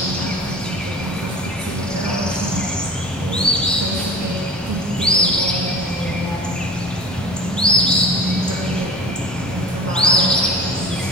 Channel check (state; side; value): normal; both; correlation 0.37